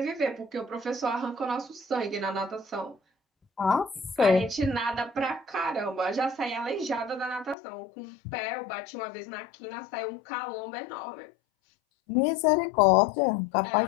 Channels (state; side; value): drops out; right; at 7.6 s